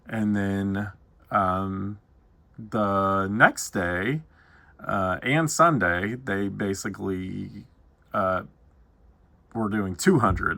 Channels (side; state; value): both; identical; correlation 1.00